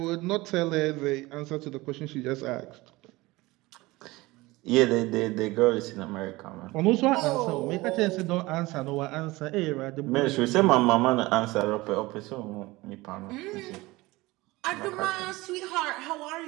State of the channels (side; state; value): left; quieter; 20.8 dB